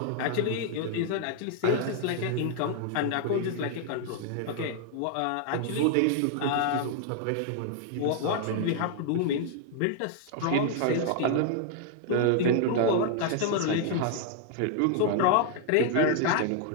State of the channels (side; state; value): both; different; correlation 0.00